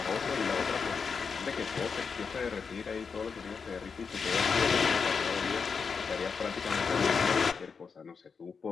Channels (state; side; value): quieter; right; 5.6 dB